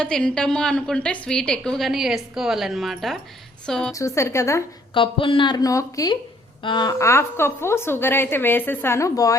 తింటాము అనుకుంటే స్వీట్ ఎక్కువగానే వేసుకోవాలన్నమాట. సో చూసారు కదా, కప్పున్నర నూకకి 1/2 కప్పు షుగర్ అయితే వేసేసాను.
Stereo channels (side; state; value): both; normal; correlation 0.64